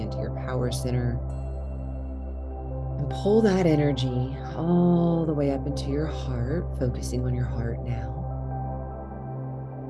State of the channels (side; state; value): both; identical; correlation 1.00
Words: your power center. And pull that energy all the way up into your heart, focusing on your heart now.